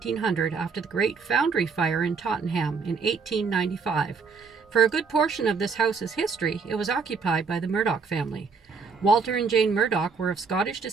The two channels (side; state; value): left; quieter; 5.2 dB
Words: after the Great Foundry Fire in Tottenham in 1895. For a good portion of this house's history, it was occupied by the Murdock family. Walter and Jane Murdock were of Scottish